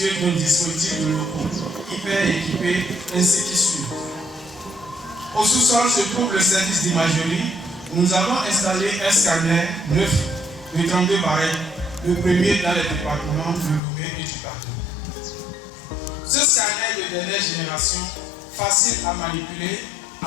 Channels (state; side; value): drops out; right; at 13.8 s